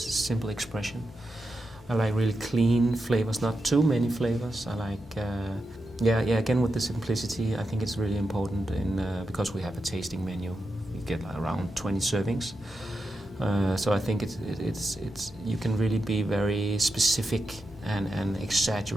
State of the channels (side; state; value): both; normal; correlation 0.88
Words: expression. I like really clean flavors, not too many flavors. I like, again with the simplicity, I think it's really important because we have a tasting menu. We get around 20 servings. So I think it's you can really be very specific and